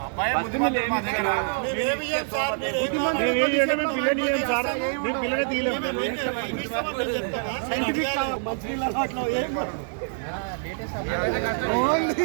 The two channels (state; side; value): silent; left; digital silence